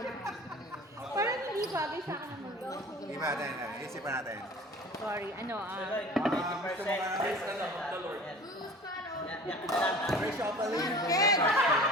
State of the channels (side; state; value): both; normal; correlation 0.42